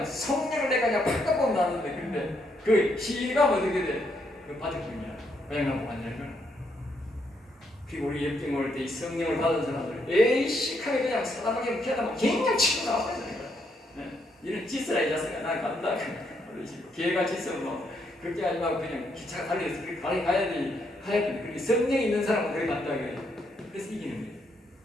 성령을 내가 그냥 팍 보면 나는데 근데 그 시가면 어떻게 돼? 그 바닥뿐이야. 고향나무 완전히 그리고 우리 역경 올 때 이 성령을 받은 사람들 에이씨 하게 그냥 사람에게 피하다 그냥 치고 나와버리니까 이런 짓을 이 자식아 난 간다 기회가 짓으면 그렇게 하지 말고 그냥 기차가 달려서 그렇게 가야 돼. 그렇게 성령이 있는 사람은 그렇게 간다 그래요. 그래서 이기는 거예요.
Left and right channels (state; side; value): normal; both; correlation 0.75